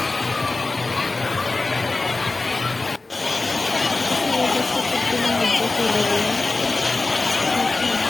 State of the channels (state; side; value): quieter; right; 3.4 dB